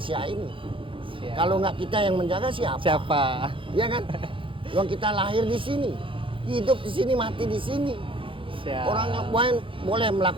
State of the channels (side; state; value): left; late; 0.25 ms